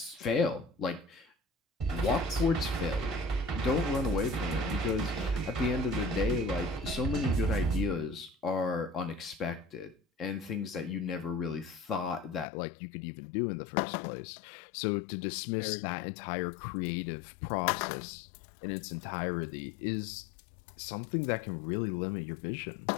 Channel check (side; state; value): right; drops out; at 12.5 s